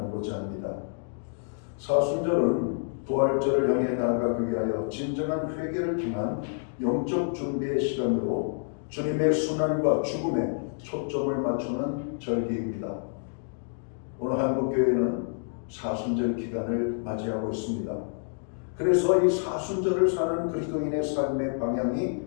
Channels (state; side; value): silent; right; digital silence